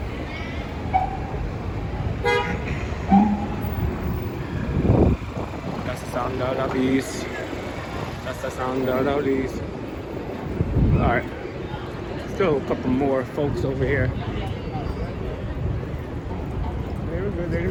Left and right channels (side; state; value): both; identical; correlation 1.00